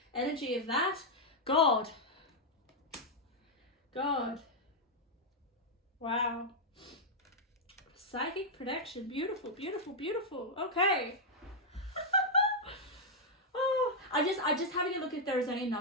energy of that? God. Wow. Psychic protection, beautiful, beautiful, beautiful. Okay. Oh, I just having a look if there is any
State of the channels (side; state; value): both; normal; correlation -0.03